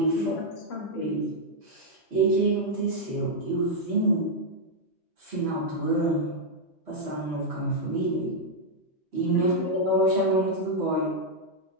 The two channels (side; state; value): both; normal; correlation -0.03